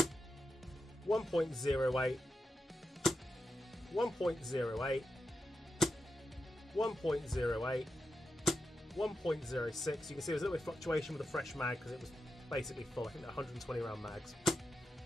1.08, 1.08, 1.08, 1.06. You can see there's a little bit of fluctuation with the fresh mag because it was basically full. I think they're 120 round mags.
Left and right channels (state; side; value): normal; both; correlation 0.89